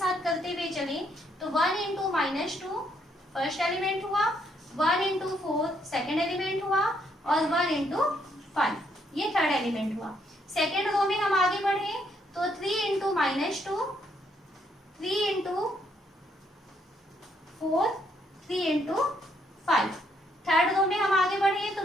करते हुए चले, तो 1 इंटू -2 फर्स्ट एलिमेंट हुआ, 1 इंटू 4 सेकेंड एलिमेंट हुआ, और 1 इंटू 5 ये थर्ड एलिमेंट हुआ। सेकेंड रो में हम आगे बढ़े तो 3 into -2, 3 into 4, 3 into 5। Third row में हम आगे बढ़े तो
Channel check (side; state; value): both; normal; correlation 0.73